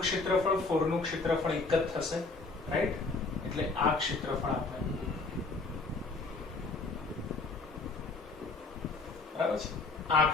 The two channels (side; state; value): right; quieter; 3.8 dB